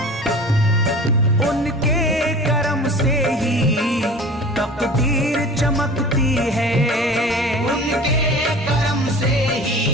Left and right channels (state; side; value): normal; both; correlation 0.39